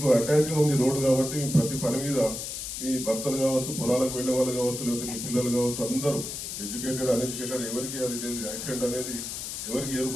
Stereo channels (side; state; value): left; noise; hiss, 6 dB below the sound